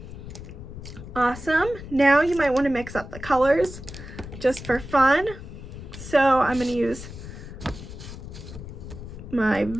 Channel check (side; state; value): left; noise; rumble, 12 dB below the sound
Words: Awesome. Now you might want to mix up the colors just for fun. So I'm going to use my